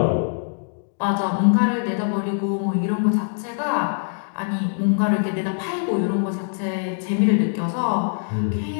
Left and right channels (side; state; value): right; silent; digital silence